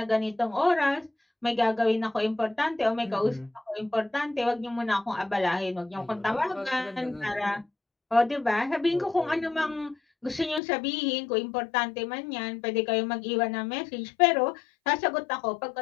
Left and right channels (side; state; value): right; drops out; at 10.6 s